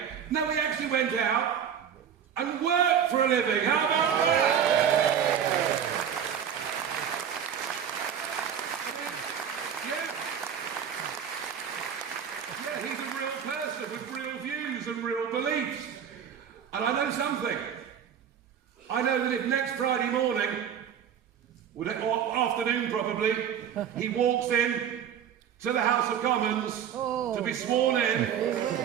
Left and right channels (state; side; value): quieter; left; 8.5 dB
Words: No, he actually went out and worked for a living. How about that? Yeah, he's a real person with real views and real beliefs. And I know something. I know that if next Friday morning, or afternoon probably, he walks in to the House of Commons to be sworn in